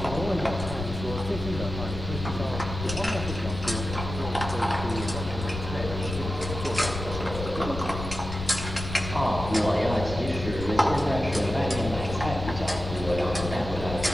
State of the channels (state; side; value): noise; left; rumble, 7 dB below the sound